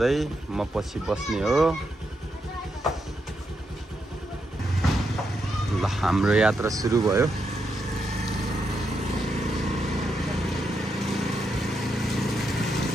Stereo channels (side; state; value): both; normal; correlation 0.82